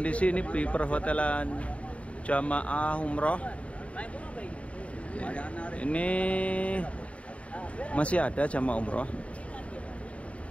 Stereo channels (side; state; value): right; late; 0.064 ms